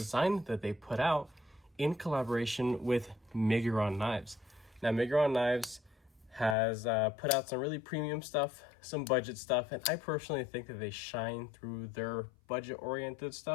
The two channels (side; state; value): right; drops out; at 6.6 s